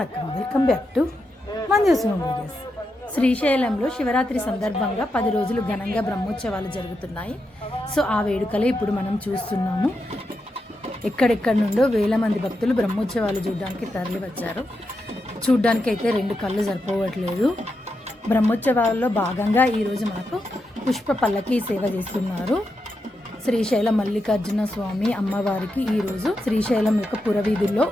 welcome back to Manju's home videos. శ్రీశైలంలో శివరాత్రి సందర్భంగా 10 రోజులు ఘనంగా బ్రహ్మోత్సవాలు జరుగుతున్నాయి. సో ఆ వేడుకలే ఇప్పుడు మనం చూస్తున్నాము. ఎక్కడెక్కడి నుండో వేల మంది భక్తులు బ్రహ్మోత్సవాలు చూడడానికి తరలి వచ్చారు. చూడ్డానికి అయితే 2 కళ్ళు సరిపోవట్లేదు. బ్రహ్మోత్సవాల్లో భాగంగా ఈరోజు మనకు పుష్ప పల్లకి సేవ చేస్తున్నారు. శ్రీశైలం మల్లికార్జున స్వామి అమ్మవారికి ఈరోజు శ్రీశైలం యొక్క పురవీధుల్లో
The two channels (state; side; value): normal; both; correlation 0.86